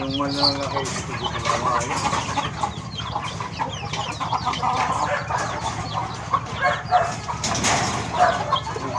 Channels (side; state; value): both; identical; correlation 1.00